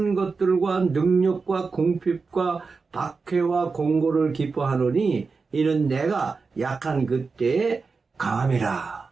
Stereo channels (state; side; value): quieter; left; 4.6 dB